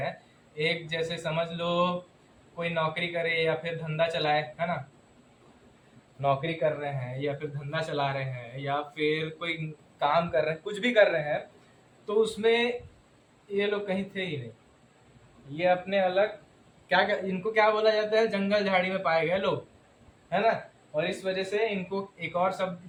एक जैसे समझ लो कोई नौकरी करे या फिर धंधा चलाए, है ना, नौकरी कर रहे हैं या फिर धंधा चला रहे हैं या फिर कोई काम कर रहे हैं, कुछ भी कर रहे हैं, तो उसमें ये लोग कहीं थे ही नहीं। ये अपने अलग इनको क्या बोला जाता है, जंगल झाड़ी में पाए गए लोग, है ना। और इस वजह से इनको एक और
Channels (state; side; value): identical; both; correlation 1.00